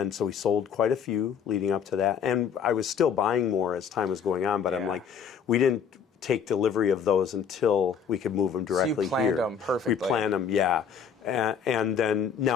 so we sold quite a few leading up to that. And I was still buying more as time was going on, but I'm like, we didn't take delivery of those until we could move them directly here. So you planned them perfectly. We planned them, yeah. And then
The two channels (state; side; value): quieter; right; 7.1 dB